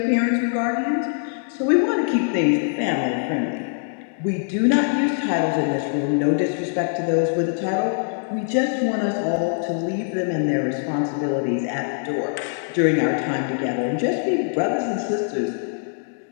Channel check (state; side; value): silent; right; digital silence